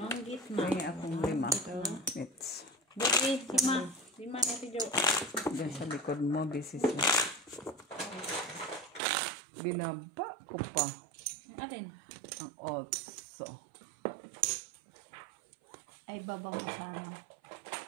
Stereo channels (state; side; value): drops out; left; at 9.0 s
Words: gitna. May akong 5 minutes. Buti, lima natin Jo. Diyan sa likod mo, busy siya. Binaba ko pa Atin. ang 8. Ay, babaw sana.